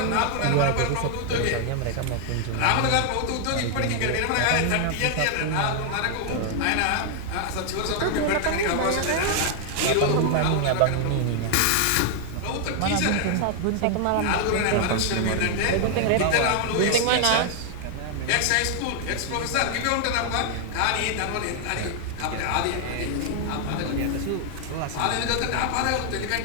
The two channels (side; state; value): both; different; correlation 0.00